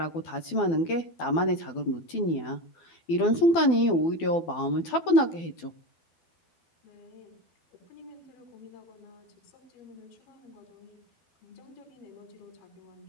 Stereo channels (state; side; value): late; right; 12 ms